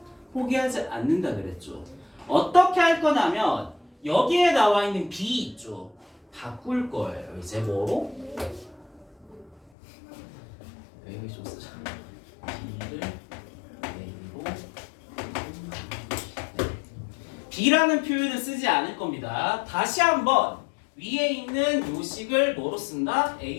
포기하지 않는다 그랬죠. 어떻게 할 거냐면 여기에 나와 있는 b 있죠. 바꿀 거예요. 이제 뭐로? 여기 좀 쓰자. b를 a로. b라는 표현을 쓰지 않을 겁니다. 다시 한번 위에 있는 요식을 뭐로 쓴다?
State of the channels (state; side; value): drops out; right; at 9.7 s